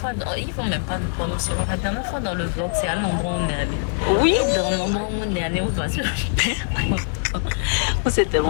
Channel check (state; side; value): silent; right; digital silence